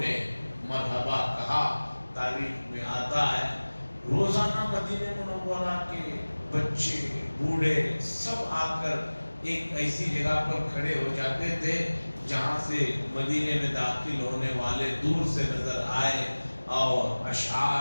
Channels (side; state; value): both; inverted; correlation -1.00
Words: نے مرحبا کہا، تاریخ میں آتا ہے روزانہ مدینہ منورہ کے بچے بوڑھے سب آ کر ایک ایسی جگہ پر کھڑے ہو جاتے تھے جہاں سے مدینے میں داخل ہونے والے دور سے نظر آئے، اور